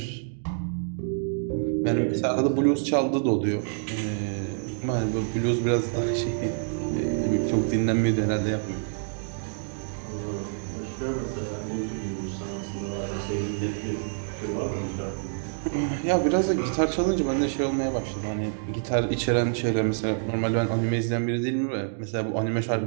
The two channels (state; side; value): silent; left; digital silence